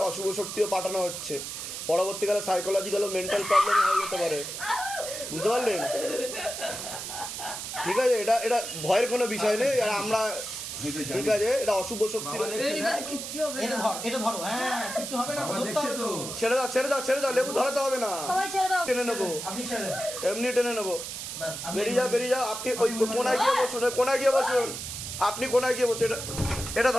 অশুভ শক্তিও পাঠানো হচ্ছে, পরবর্তীকালে সাইকোলজিক্যাল ও মেন্টাল প্রবলেম হয়ে যেতে পারে, বুঝতে পারলেন? ঠিক আছে, এটা এটা ভয়ের কোনো বিষয় নেই। আর আমরা ঠিক আছে, এটা অশুভ শক্তি। ছেড়ে দাও ছেড়ে দাও ছেড়ে দাও, লেবু ধরাতে হবে না, টেনে নেবো, এমনি টেনে নেবো। বেরিয়ে যাও বেরিয়ে যাও, আপনি ওই কোনায় গিয়ে বসুন, ওই কোনায় গিয়ে বসুন, আপনি কোনায় গিয়ে বসুন। এটা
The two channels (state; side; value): noise; right; hiss, 7 dB below the sound